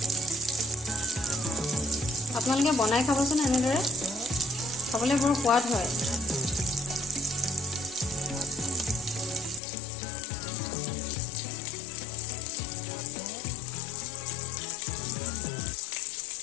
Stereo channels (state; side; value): drops out; right; at 9.6 s